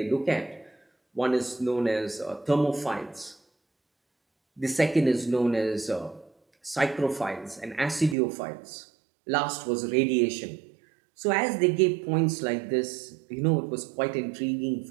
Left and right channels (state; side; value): drops out; left; at 8.2 s